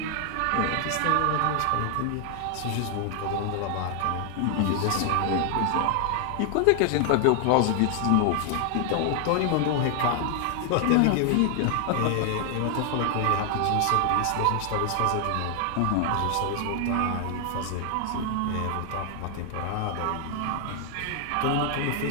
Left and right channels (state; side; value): different; both; correlation 0.00